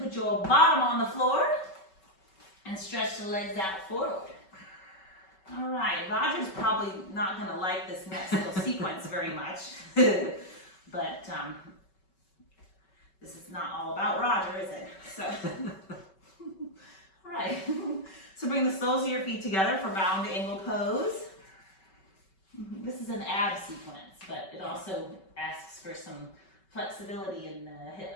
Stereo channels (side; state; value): right; late; 5.3 ms